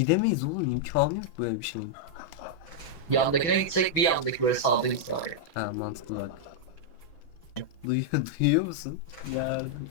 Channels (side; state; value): right; late; 6.1 ms